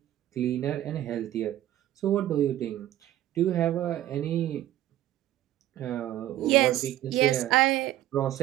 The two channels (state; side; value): quieter; left; 13.4 dB